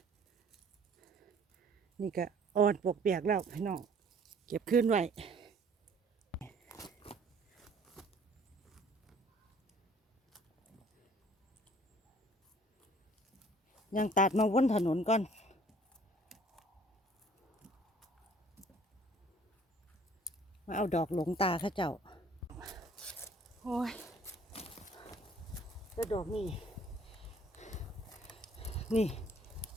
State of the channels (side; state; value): both; normal; correlation 0.56